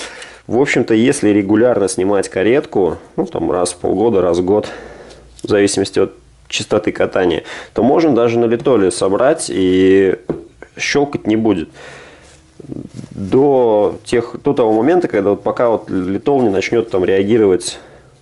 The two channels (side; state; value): both; identical; correlation 1.00